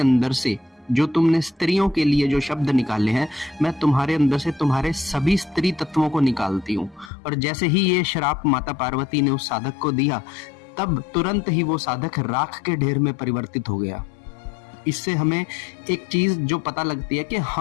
से जो तुमने स्त्रियों के लिए जो शब्द निकाले हैं, मैं तुम्हारे अंदर से तुम्हारे सभी स्त्री तत्वों को निकालती हूँ। और जैसे ही ये श्राप माता पार्वती ने उस साधक को दिया तब तुरंत ही वो साधक राख के ढेर में परिवर्तित हो गया। इससे हमें एक चीज जो पता लगती है कि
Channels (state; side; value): drops out; right; at 7.1 s